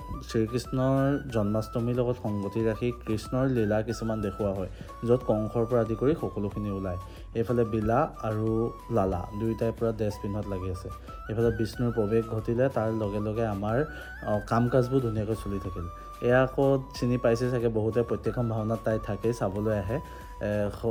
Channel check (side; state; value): both; identical; correlation 1.00